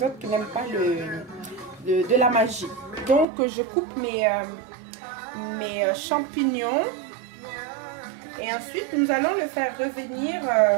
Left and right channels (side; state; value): left; drops out; at 3.2 s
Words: autres qui n'aiment pas de la magie. Donc je coupe mes champignons. Et ensuite, nous allons le faire revenir